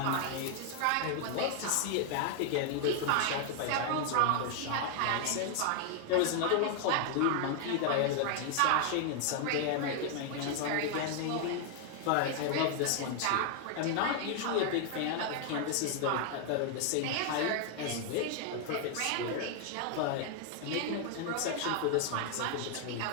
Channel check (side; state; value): both; different; correlation 0.00